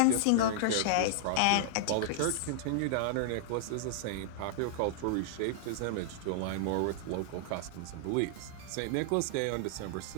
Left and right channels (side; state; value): both; different; correlation -0.01